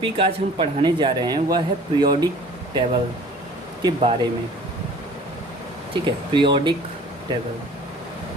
आज हम पढ़ाने जा रहे हैं वह है पीरियोडिक टेबल के बारे में। ठीक है, पीरियोडिक टेबल।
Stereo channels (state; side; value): normal; both; correlation 0.48